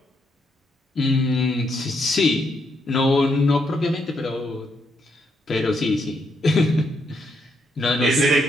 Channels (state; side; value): normal; both; correlation 0.77